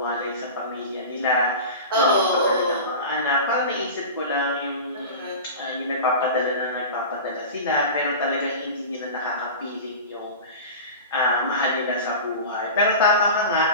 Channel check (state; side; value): inverted; both; correlation -0.31